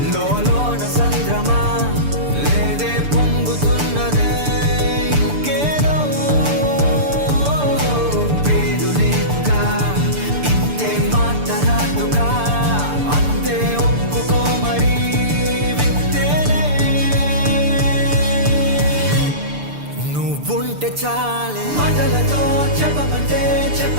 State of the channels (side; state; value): left; late; 6.8 ms